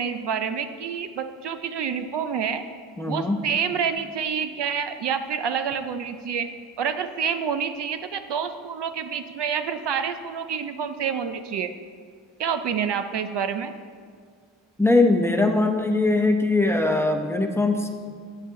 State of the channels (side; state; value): both; normal; correlation 0.52